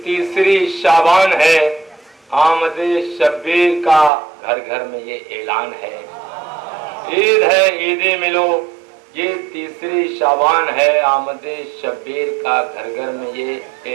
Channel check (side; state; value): left; drops out; at 4.1 s